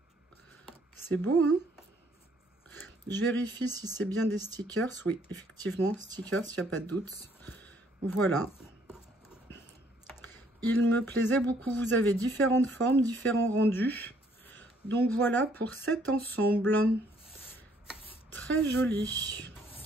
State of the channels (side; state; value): both; normal; correlation 0.65